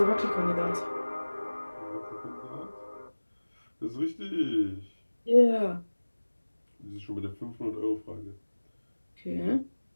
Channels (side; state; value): both; inverted; correlation -1.00